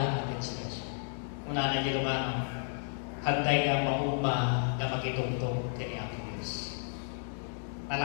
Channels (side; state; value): right; silent; digital silence